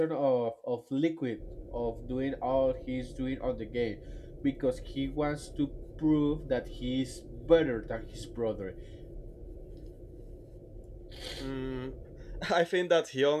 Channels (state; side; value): identical; both; correlation 1.00